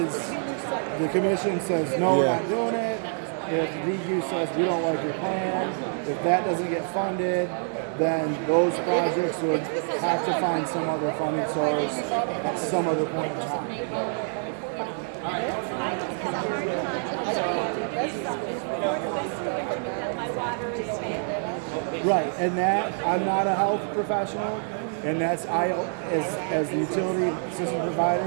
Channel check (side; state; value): left; silent; 58 dB below the other